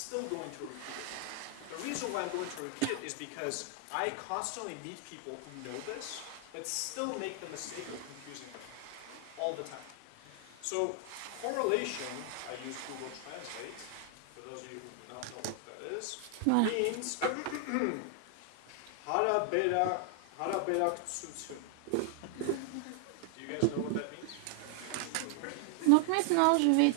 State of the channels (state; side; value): different; both; correlation 0.00